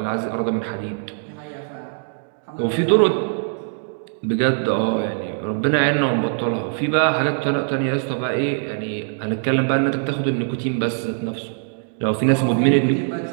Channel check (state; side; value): silent; left; 64 dB below the other